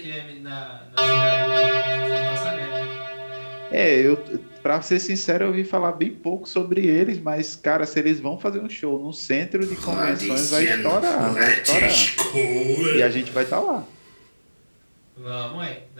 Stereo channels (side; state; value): both; inverted; correlation -1.00